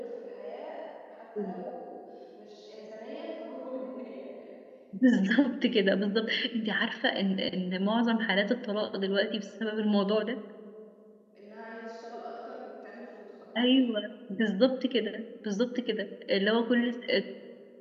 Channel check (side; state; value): both; identical; correlation 1.00